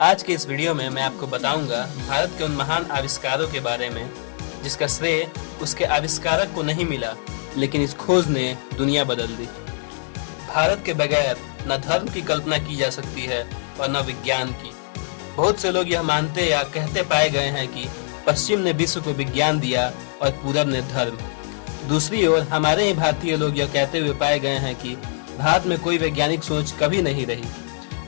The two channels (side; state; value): right; silent; digital silence